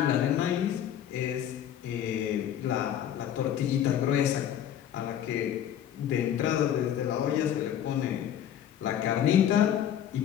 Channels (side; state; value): right; quieter; 10.2 dB